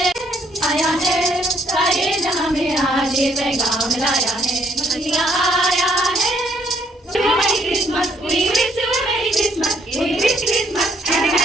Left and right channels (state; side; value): normal; both; correlation 0.68